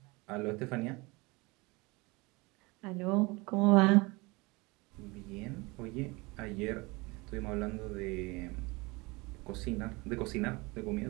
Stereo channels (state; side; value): quieter; left; 25.1 dB